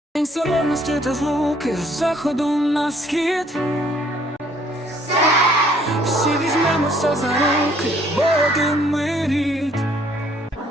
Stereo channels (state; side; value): normal; both; correlation 0.62